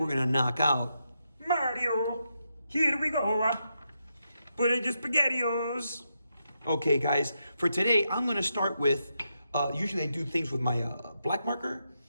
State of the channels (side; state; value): both; inverted; correlation -0.84